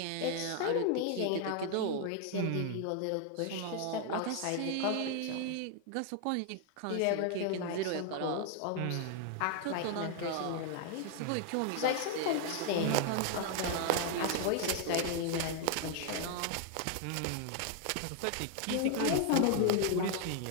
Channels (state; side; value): different; both; correlation 0.00